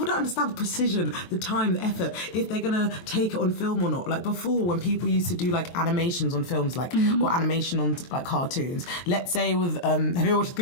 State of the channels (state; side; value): late; right; 23 ms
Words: don't understand the precision, the time, the effort, if they're gonna take it on film or not. Like, before, when people used to do like animations on films, like or animation on like cartoons. Let's say with have you ever watched the